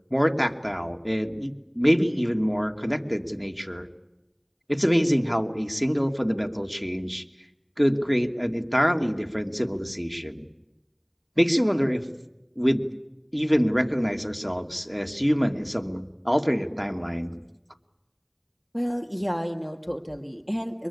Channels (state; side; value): identical; both; correlation 1.00